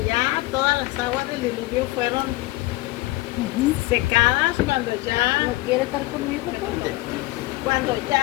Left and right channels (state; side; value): quieter; right; 19.9 dB